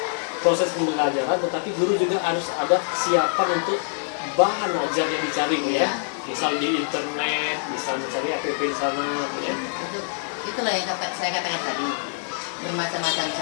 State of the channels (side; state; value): right; silent; digital silence